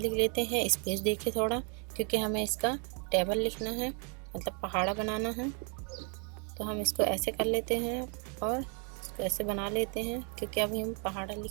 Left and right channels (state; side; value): quieter; left; 37.3 dB